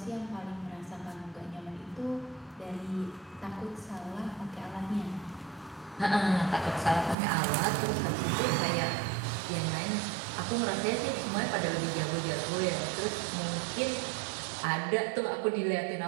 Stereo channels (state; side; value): drops out; left; at 7.2 s